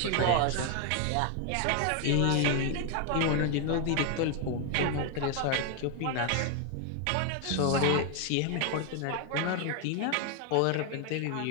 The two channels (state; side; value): different; both; correlation 0.01